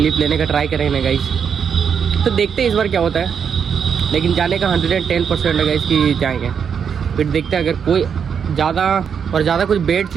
लेने का ट्राई करेंगे ना गाइस। तो देखते हैं इस बार क्या होता है, लेकिन जाने का 110% है गाइस कि जाएंगे। फिर देखते हैं, अगर कोई ज़्यादा कुछ बेड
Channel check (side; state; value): left; quieter; 7.2 dB